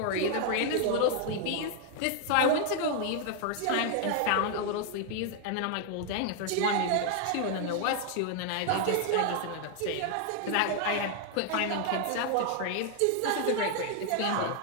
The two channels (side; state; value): both; different; correlation 0.00